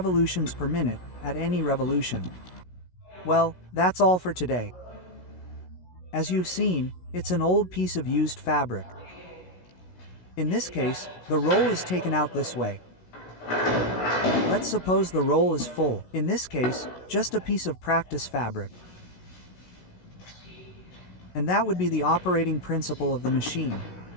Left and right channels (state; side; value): late; right; 16 ms